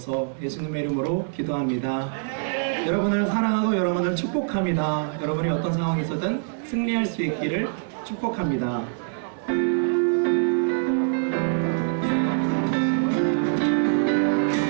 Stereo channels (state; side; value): silent; left; 62 dB below the other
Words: 예수님의 이름으로 기도합니다. 여러분을 사랑하고 여러분을 축복합니다. 여러분이 어떤 상황에서든 승리할 수 있기를 축복합니다.